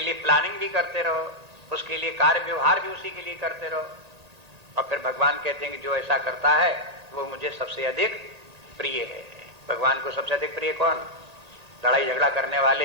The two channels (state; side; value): late; left; 1.8 ms